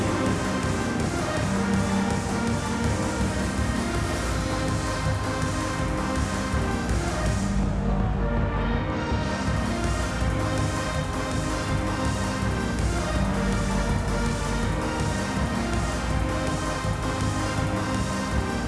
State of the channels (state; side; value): identical; both; correlation 1.00